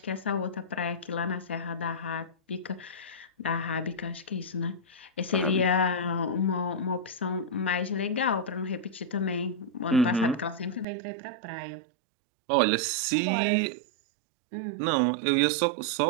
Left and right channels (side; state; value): left; drops out; at 10.9 s